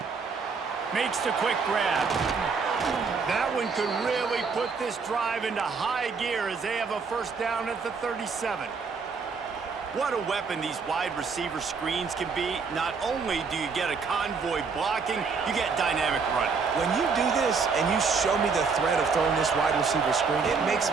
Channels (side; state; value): left; quieter; 5.1 dB